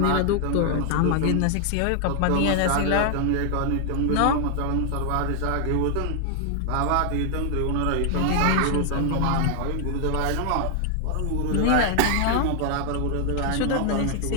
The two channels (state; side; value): different; both; correlation 0.00